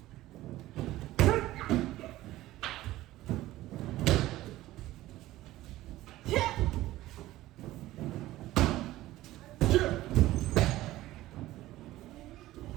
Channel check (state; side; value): quieter; left; 16.1 dB